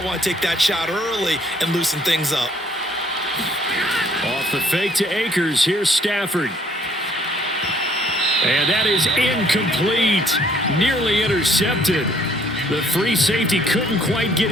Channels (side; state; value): both; normal; correlation 0.62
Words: want to take that shot early and loosen things up. Off the fake to Akers. Here's Stafford. And that is incomplete. Nearly intercepted. The free safety couldn't quite get